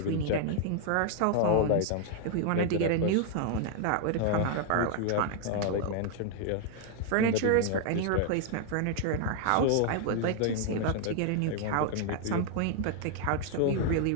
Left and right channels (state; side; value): different; both; correlation 0.00